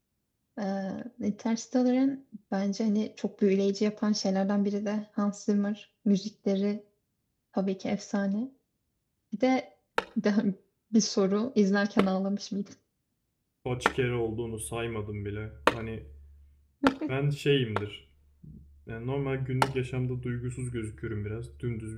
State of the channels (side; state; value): both; identical; correlation 1.00